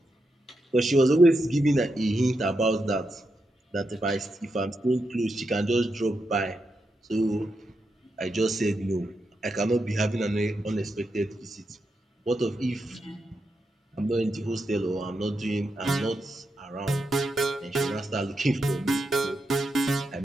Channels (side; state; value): both; normal; correlation 0.85